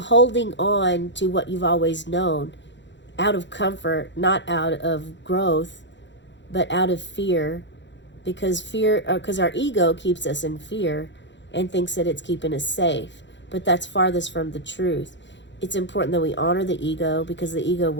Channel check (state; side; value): late; right; 0.53 ms